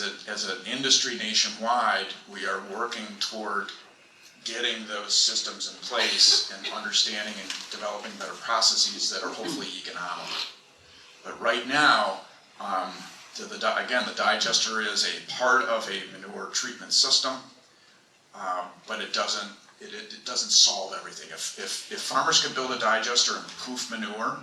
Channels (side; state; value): both; identical; correlation 1.00